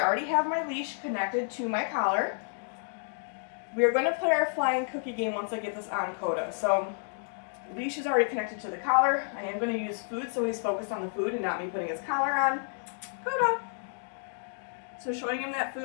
already have my leash connected to my collar. We're going to play our flying cookie game once I get this on Koda. So the leash is already connected to the collar. I am going to use food so he's focused on the food and not me putting his collar on. Koda. So showing him that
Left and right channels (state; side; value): silent; right; digital silence